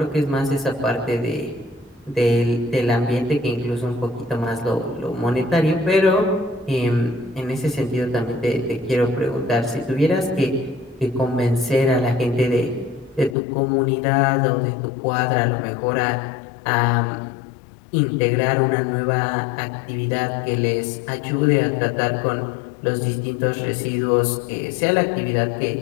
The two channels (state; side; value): drops out; right; at 13.4 s